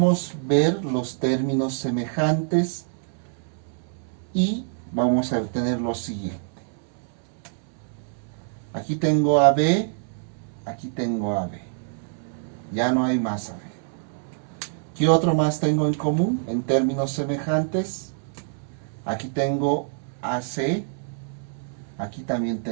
ver los términos semejantes y vamos a obtener lo siguiente. Aquí tengo AB, aquí tengo AB. Ya no hay más AB. ¿Qué otro más tengo en común en términos semejantes? Aquí tengo AC, aquí también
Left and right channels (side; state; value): left; silent; 61 dB below the other